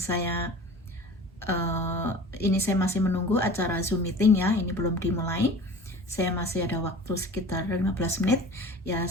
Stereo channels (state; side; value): normal; both; correlation 0.40